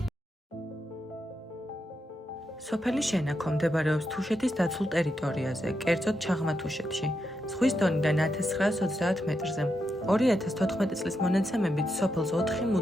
სოფელი შენაქო მდებარეობს თუშეთის დაცულ ტერიტორიაზე, კერძოდ ჩაღმა-თუშეთში, ზღვის დონიდან 1930 მეტრზე. 2014 წლის მონაცემებით სოფელს 4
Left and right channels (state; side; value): normal; both; correlation 0.84